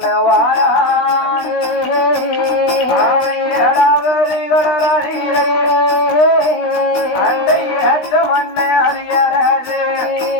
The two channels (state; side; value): late; right; 16 ms